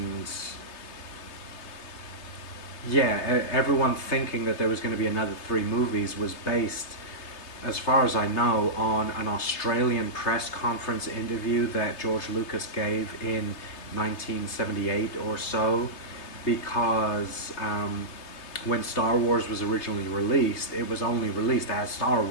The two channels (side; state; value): right; late; 3.3 ms